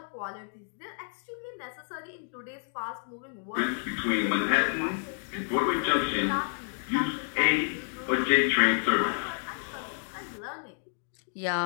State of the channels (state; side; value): silent; right; 58 dB below the other